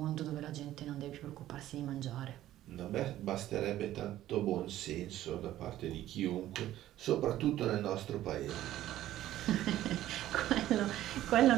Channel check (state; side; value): quieter; left; 13.7 dB